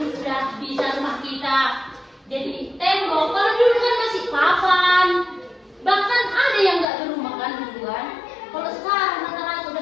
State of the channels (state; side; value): drops out; right; at 6.9 s